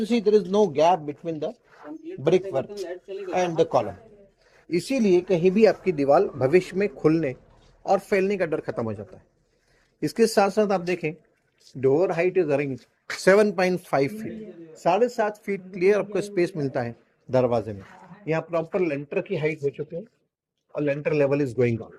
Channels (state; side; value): identical; both; correlation 1.00